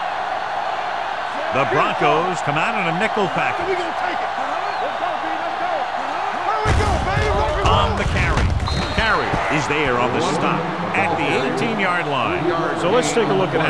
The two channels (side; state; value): both; identical; correlation 1.00